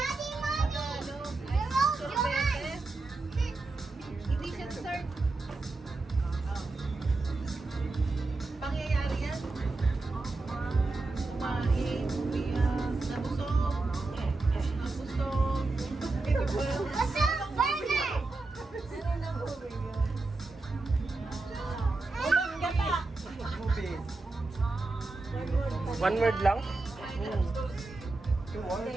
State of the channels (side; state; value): left; quieter; 3.4 dB